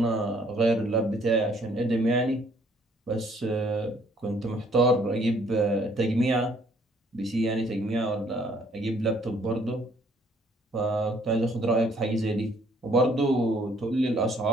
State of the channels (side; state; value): both; normal; correlation 0.62